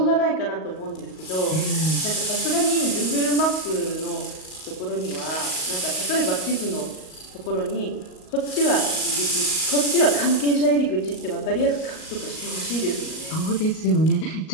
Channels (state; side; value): late; right; 38 ms